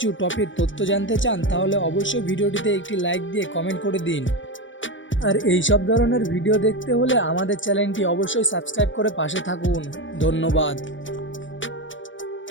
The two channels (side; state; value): right; late; 0.56 ms